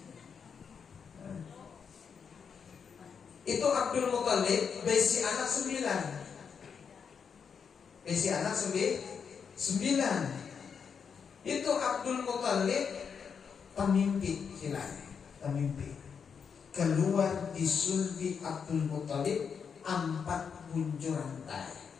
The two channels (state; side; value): quieter; right; 6.5 dB